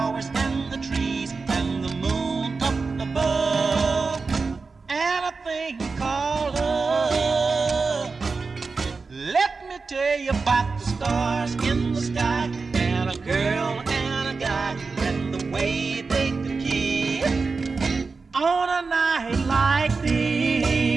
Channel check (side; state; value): left; quieter; 4.4 dB